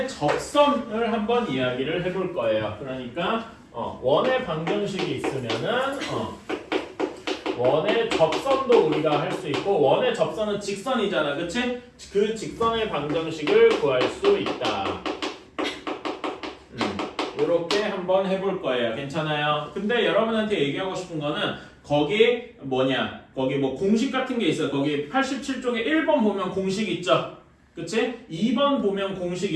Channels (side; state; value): both; identical; correlation 1.00